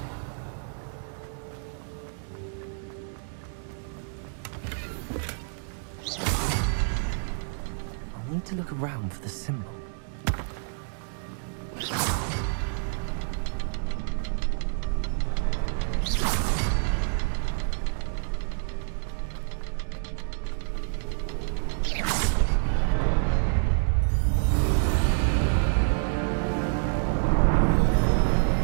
I'll need to look around for the symbol.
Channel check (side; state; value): left; silent; digital silence